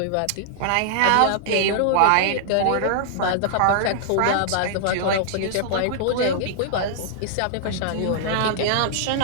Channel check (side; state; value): both; different; correlation -0.01